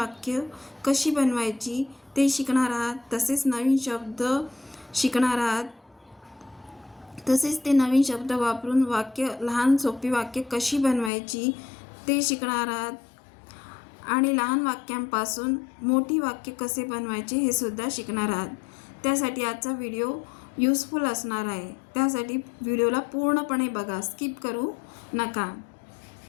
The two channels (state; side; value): drops out; right; at 11.1 s